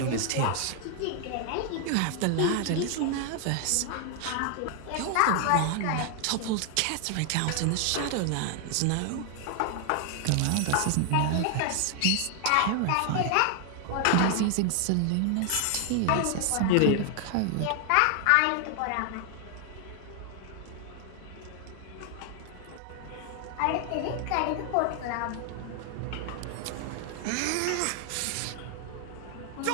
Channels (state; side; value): different; both; correlation 0.00